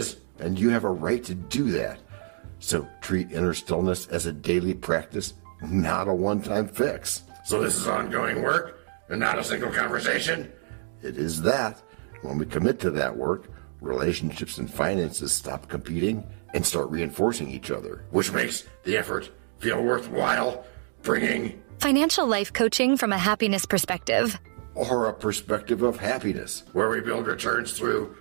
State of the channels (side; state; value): left; silent; 60 dB below the other